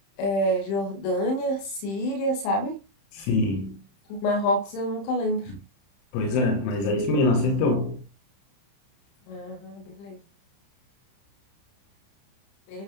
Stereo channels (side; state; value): right; late; 31 ms